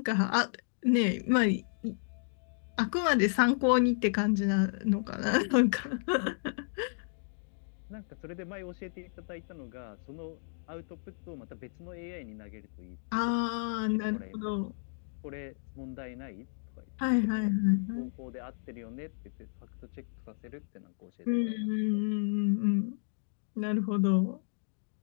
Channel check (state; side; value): silent; right; digital silence